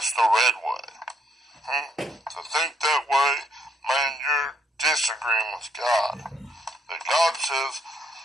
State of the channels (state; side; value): normal; both; correlation 0.72